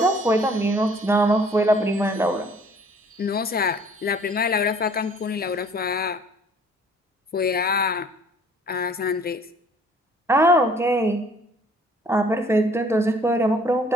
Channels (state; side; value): normal; both; correlation 0.55